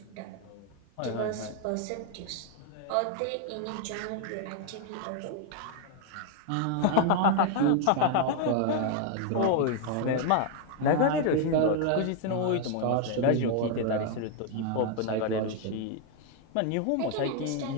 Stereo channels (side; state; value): both; different; correlation 0.00